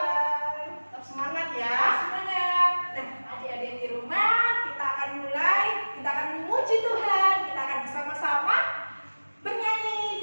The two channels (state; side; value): inverted; both; correlation -1.00